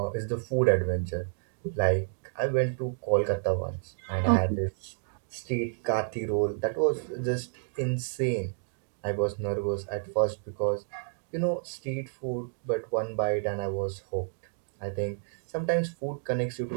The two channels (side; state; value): left; silent; digital silence